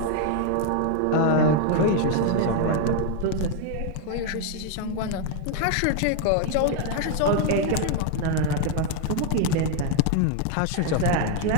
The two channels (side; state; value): both; different; correlation 0.00